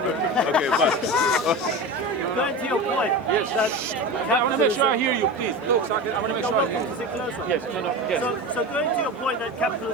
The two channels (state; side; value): normal; both; correlation 0.27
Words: bye. Going to your point. Yes. I want to make sure I hear you, please. Look, so I want to make sure I hear you. Is it closer? Yes, yes. So going to your point that